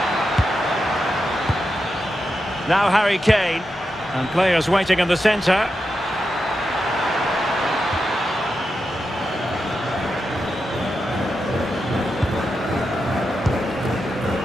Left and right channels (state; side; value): normal; both; correlation 0.88